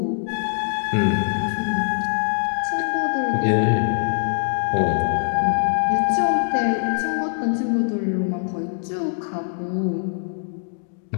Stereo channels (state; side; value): silent; right; digital silence